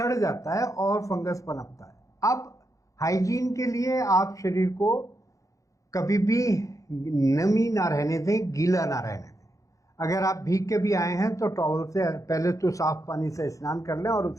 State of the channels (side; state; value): right; late; 0.16 ms